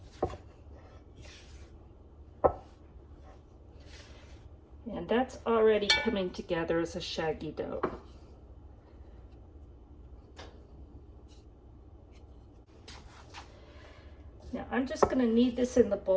And that's already coming together as a shaggy dough. Now I'm just going to knead this in the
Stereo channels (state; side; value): identical; both; correlation 1.00